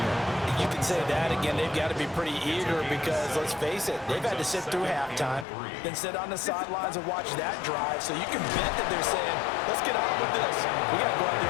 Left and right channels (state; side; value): drops out; right; at 5.5 s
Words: You can say that again. They've got to be pretty eager because, let's face it, they've had to sit through halftime, then sit on the sidelines and watch that drive. So you can bet that they're saying, let's get on with this. We got to go out there